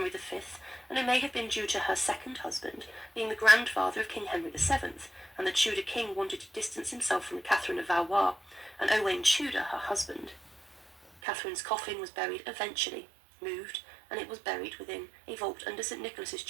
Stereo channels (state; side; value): drops out; left; at 11.1 s